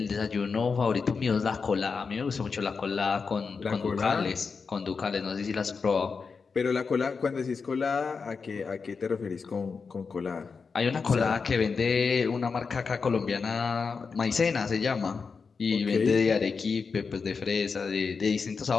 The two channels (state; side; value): quieter; right; 5.1 dB